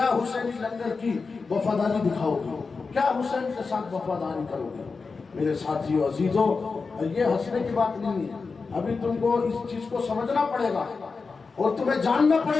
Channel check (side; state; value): right; quieter; 4.5 dB